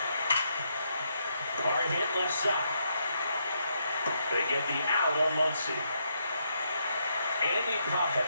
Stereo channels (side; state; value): both; inverted; correlation -0.78